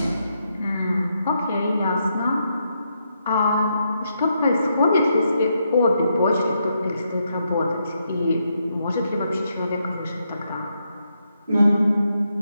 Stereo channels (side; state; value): both; inverted; correlation -0.80